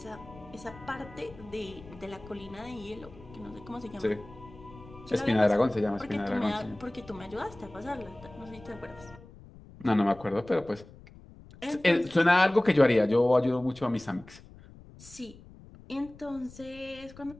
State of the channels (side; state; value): left; noise; rumble, 20 dB below the sound